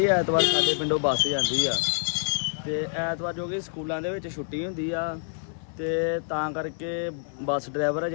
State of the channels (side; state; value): right; silent; digital silence